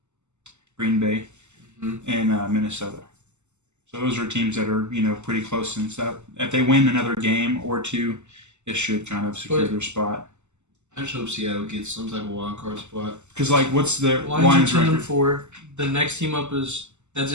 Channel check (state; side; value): late; left; 0.83 ms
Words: Green Bay and Minnesota. So those are teams that are, pretty close and stuff. If they win another game or two, it should kind of secure their spot. I just hope Seattle gets some type of wild card spot. Because like, what's the Lions are 10 record? and 4. The next team up that's